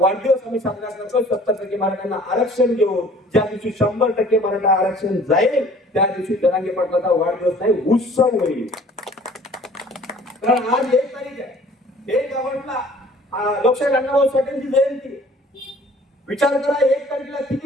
आम्ही साजरा करतो 70% मराठ्यांना आरक्षण देऊन. ज्या दिवशी 100% मराठा आरक्षण जाईल त्या दिवशी जरांगे पाटलाचा वाढदिवस नाही उत्सव होईल. कारण आज 1 तारीख आहे, 1 ऑगस्टला लोकशाहीर अण्णाभाऊ साठेंची जयंती. विचार करा 1 तारखेला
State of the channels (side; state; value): both; normal; correlation 0.52